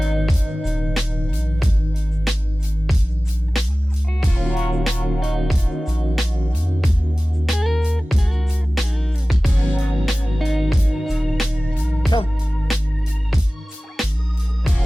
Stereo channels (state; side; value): normal; both; correlation 0.97